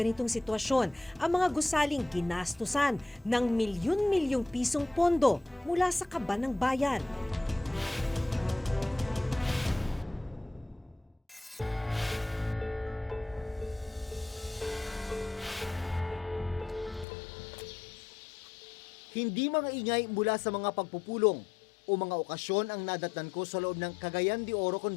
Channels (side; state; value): right; drops out; at 17.1 s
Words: sitwasyon ang mga gusaling ginastusan ng milyon-milyong pisong pondo mula sa kaban ng bayan? Hindi mga ingay mula sa mga pagpupulong o mga okasyon ang nadatnan ko sa loob ng Cagayan de Oro